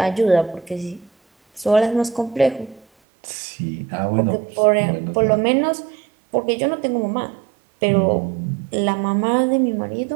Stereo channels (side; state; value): left; drops out; at 2.9 s